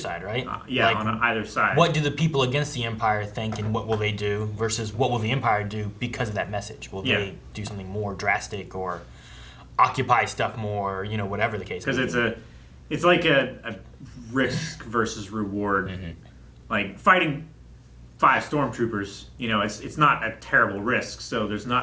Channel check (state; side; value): identical; both; correlation 1.00